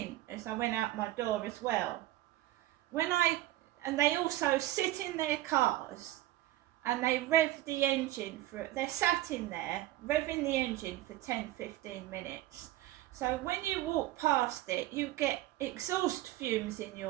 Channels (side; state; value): left; quieter; 15.5 dB